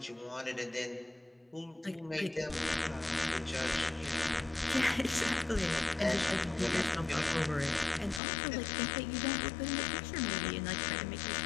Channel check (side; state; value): right; drops out; at 8.2 s